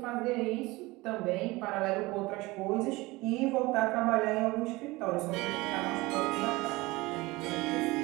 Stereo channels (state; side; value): quieter; left; 21.5 dB